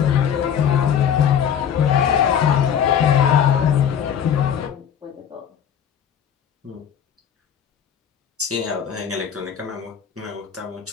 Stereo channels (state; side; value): quieter; right; 8.5 dB